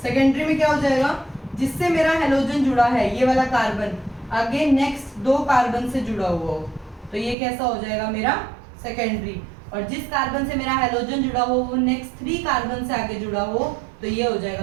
सेकेंडरी में क्या हो जाएगा, जिससे मेरा हेलोजन जुड़ा है ये वाला कार्बन आगे नेक्स्ट 2 कार्बन से जुड़ा हुआ हो तो ये कैसा हो जाएगा मेरा सेकेंडरी, और जिस कार्बन से मेरा हेलोजन जुड़ा हो वो नेक्स्ट 3 कार्बन से आगे जुड़ा हो तो ये हो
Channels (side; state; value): left; drops out; at 7.4 s